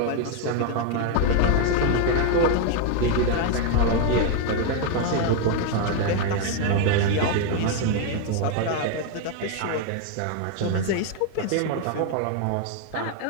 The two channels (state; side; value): different; both; correlation 0.01